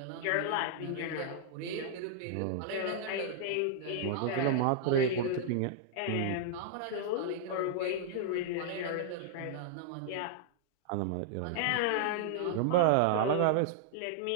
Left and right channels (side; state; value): both; different; correlation -0.01